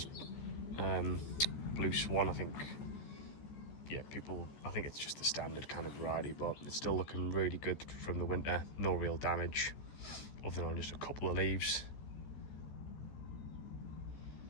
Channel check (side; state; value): right; late; 14 ms